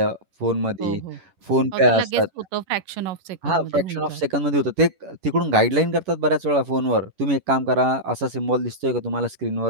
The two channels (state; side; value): late; left; 11 ms